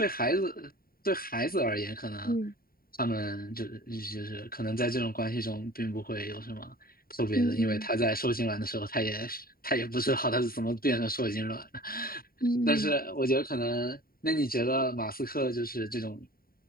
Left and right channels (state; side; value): late; right; 0.43 ms